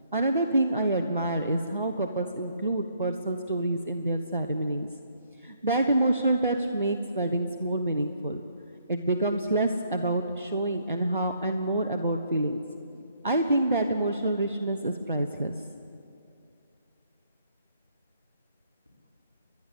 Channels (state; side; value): inverted; both; correlation -0.68